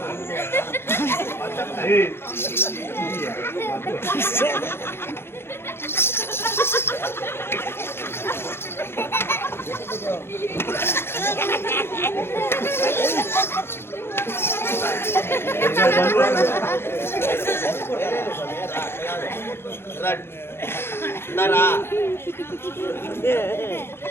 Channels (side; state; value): right; late; 0.11 ms